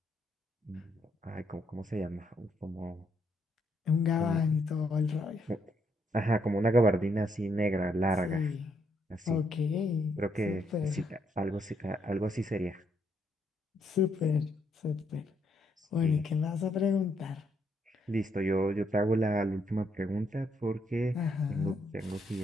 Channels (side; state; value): both; normal; correlation 0.74